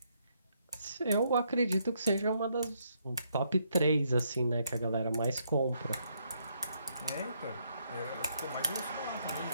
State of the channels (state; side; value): inverted; both; correlation -0.74